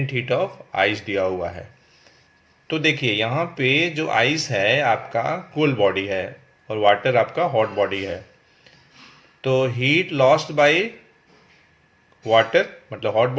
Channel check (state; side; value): identical; both; correlation 1.00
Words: heat of ice दिया हुआ है। तो देखिए यहाँ पे जो आइस है आपका कोल्ड बॉडी है, और वाटर आपका हॉट बॉडी है, तो हीट लॉस्ट बाय वाटर मतलब हॉट